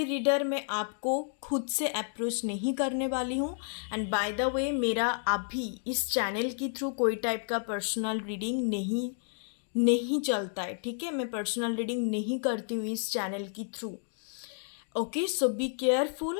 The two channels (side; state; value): right; silent; 57 dB below the other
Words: रीडर मैं आपको खुद से अप्रोच नहीं करने वाली हूँ। एंड बाय द वे, मेरा अभी इस चैनल के थ्रू कोई टाइप का पर्सनल रीडिंग नहीं चलता है, ठीक है? मैं पर्सनल रीडिंग नहीं करती हूँ इस चैनल के through. Okay, so be